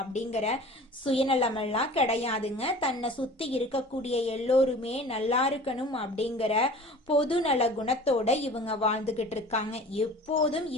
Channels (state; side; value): normal; both; correlation 0.42